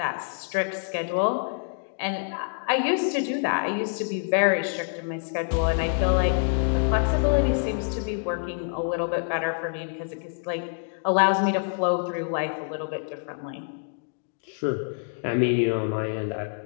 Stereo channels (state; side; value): silent; right; digital silence